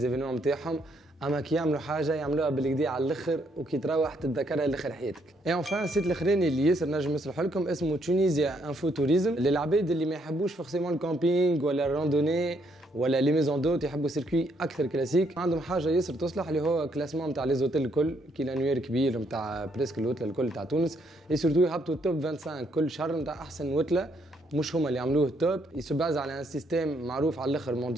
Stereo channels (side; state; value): both; normal; correlation 0.72